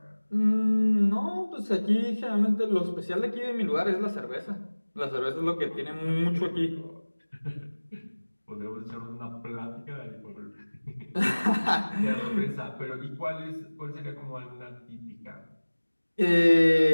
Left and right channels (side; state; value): both; inverted; correlation -1.00